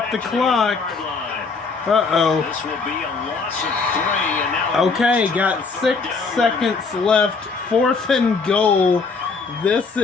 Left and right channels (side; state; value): right; quieter; 4.5 dB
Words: the clock. Uh-oh. This will be a loss of 3, and now Okay, got 6 seconds left. 4th and goal. This